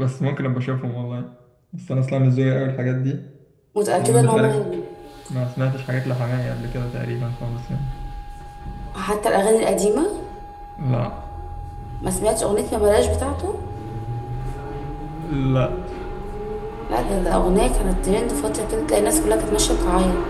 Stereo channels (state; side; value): identical; both; correlation 1.00